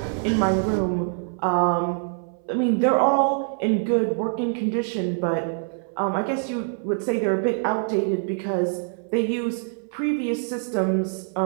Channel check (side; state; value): left; silent; 62 dB below the other